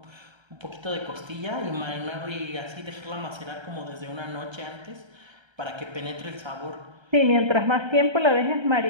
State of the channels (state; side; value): late; left; 1.3 ms